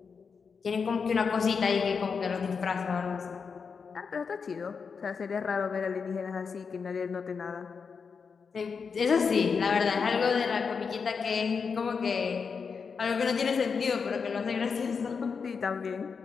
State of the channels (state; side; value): quieter; right; 5.6 dB